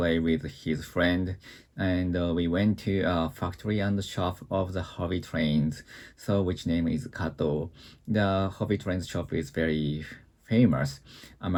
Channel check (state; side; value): identical; both; correlation 1.00